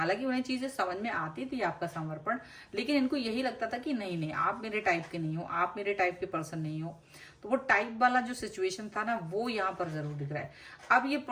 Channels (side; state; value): both; identical; correlation 1.00